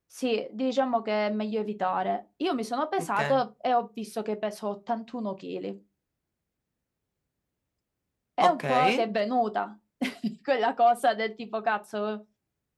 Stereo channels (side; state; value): both; identical; correlation 1.00